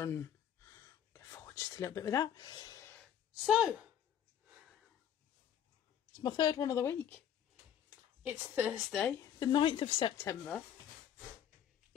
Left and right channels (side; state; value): right; quieter; 9.7 dB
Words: Go forward just a little bit with that. So, it's my third one of the week. It's Thursday, the 9th of September.